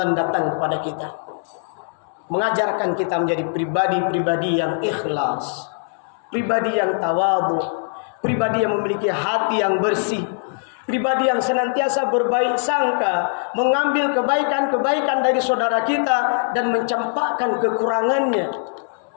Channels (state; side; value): silent; right; 65 dB below the other